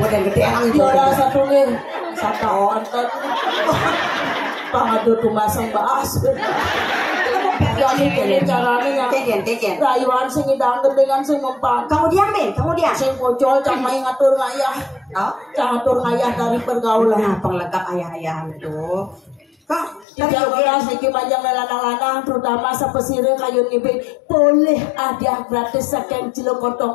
gede emang itu. Juara satu nih. Sata onten. Pangadu tumasang baas. Jadi kene carane Keken. rayuan sing idang dengan sing mempan. Kamu diam, Ben. Kamu diam. Sing pocol cang main ngatur ngayah. Oh, Cang ngatur ngayah dari pergaulan. nah, penglengkap ayah-ayah itu. Kak, Tiga belas niki panjang lanang-lanang terutama sepesire kayu ngibing boleh ada gratis saking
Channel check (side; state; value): right; drops out; at 20.1 s